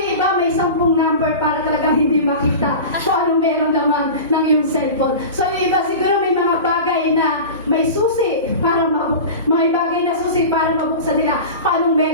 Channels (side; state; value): both; inverted; correlation -0.31